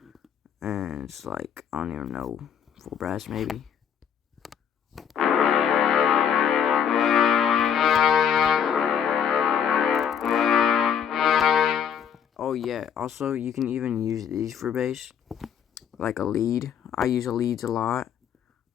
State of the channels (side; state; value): right; quieter; 8.1 dB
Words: and it's like I don't even know, full brass maybe. Oh Oh yeah, also you can even use these for bass, like a lead. I use a leads a lot.